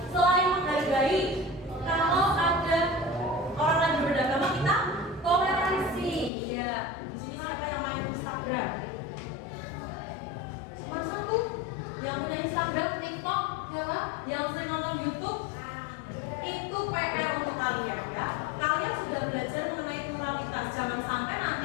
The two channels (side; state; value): right; drops out; at 6.3 s